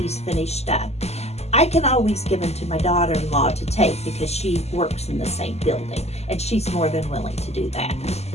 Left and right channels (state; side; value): late; right; 0.30 ms